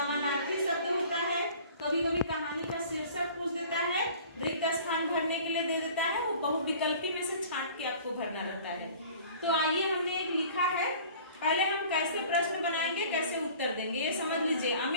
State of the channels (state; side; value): inverted; both; correlation -0.47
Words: शब्द होता है, कभी कभी कहानी का शीर्षक पूछ देता है, रिक्त स्थान भरने के लिए दे देता है, वो बहुविकल्पी में से छांट के आपको भरना रहता है। तो आइए, हमने एक लिखा है, पहले हम कैसे प्रश्न बनाएंगे, कैसे उत्तर देंगे, ये समझ लीजिए।